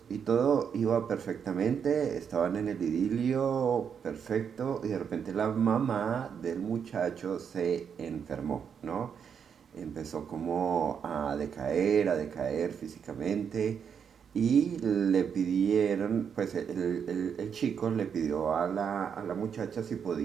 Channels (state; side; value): quieter; left; 7.3 dB